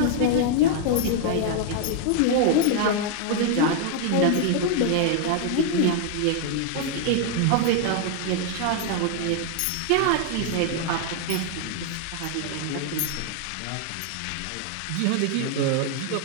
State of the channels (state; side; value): different; both; correlation 0.00